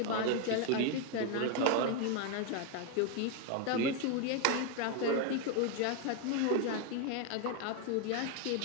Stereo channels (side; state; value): both; different; correlation 0.01